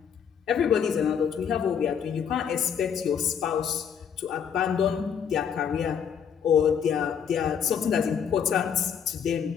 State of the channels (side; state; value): right; quieter; 7.7 dB